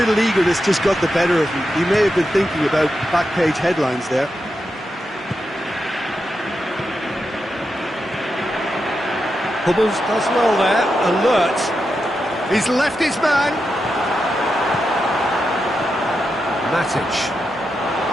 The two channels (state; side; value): normal; both; correlation 0.87